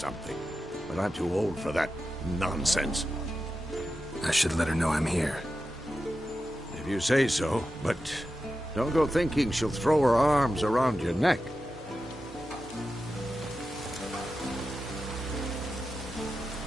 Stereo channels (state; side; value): normal; both; correlation 0.91